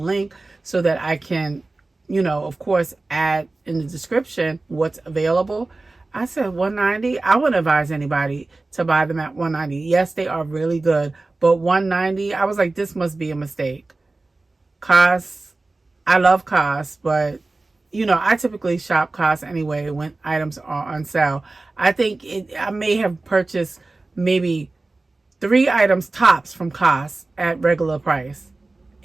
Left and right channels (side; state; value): left; quieter; 3.3 dB